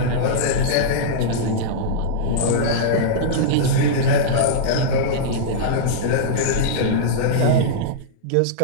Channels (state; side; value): different; both; correlation -0.03